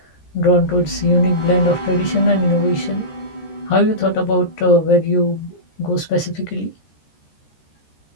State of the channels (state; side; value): late; right; 13 ms